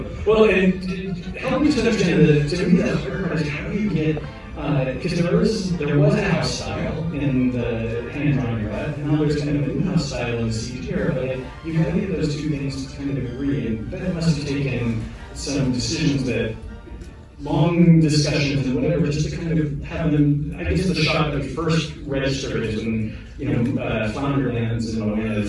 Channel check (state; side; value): identical; both; correlation 1.00